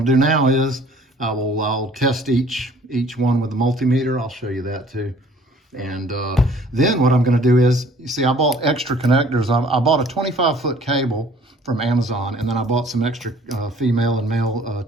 do now is I'll test each one with the multimeter. I'll show you that too. And then what I'm gonna do is, you see, I bought extra connectors. I bought a 25-foot cable from Amazon, and then I bought some extra female and male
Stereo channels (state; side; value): normal; both; correlation 0.55